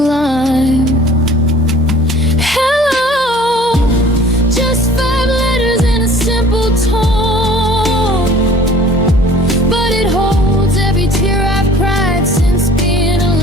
Hello, just 5 letters in a simple tone, but it holds every tear I've cried since being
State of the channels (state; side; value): normal; both; correlation 0.49